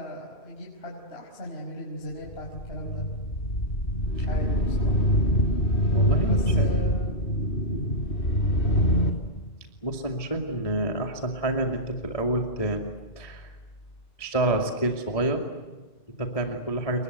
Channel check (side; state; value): right; late; 1.7 ms